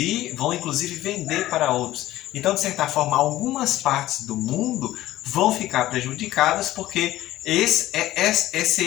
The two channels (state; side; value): quieter; right; 15.3 dB